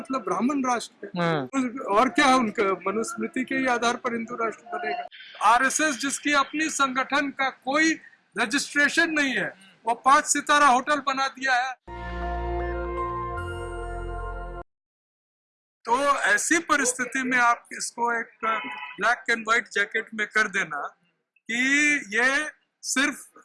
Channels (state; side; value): identical; both; correlation 1.00